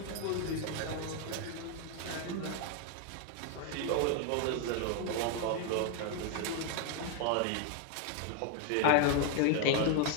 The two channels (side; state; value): both; different; correlation 0.00